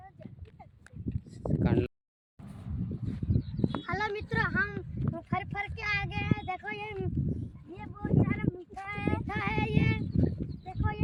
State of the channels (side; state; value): both; identical; correlation 1.00